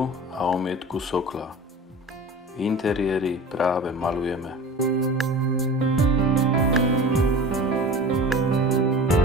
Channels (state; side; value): normal; both; correlation 0.36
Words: a omietku sokla. Interiéry práve maľujeme.